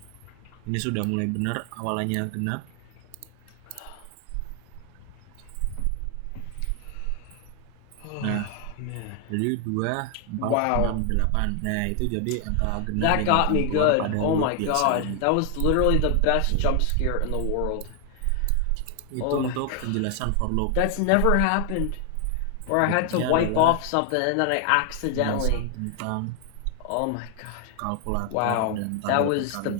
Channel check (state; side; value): different; both; correlation 0.00